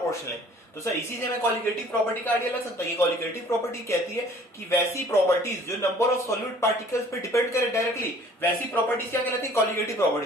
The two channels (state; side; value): normal; both; correlation 0.53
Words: है। तो सर इसी से मैं कॉलिगेटिव प्रॉपर्टी का आइडिया लग सकता है। ये कॉलिगेटिव प्रॉपर्टी कहती है कि वैसी प्रॉपर्टीज जो नंबर ऑफ सॉल्यूट पार्टिकल्स पे डिपेंड करे डायरेक्टली, वैसी प्रॉपर्टीज क्या कहलाती है? कॉलिगेटिव